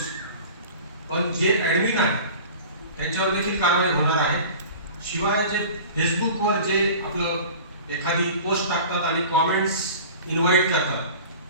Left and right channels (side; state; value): both; inverted; correlation -0.40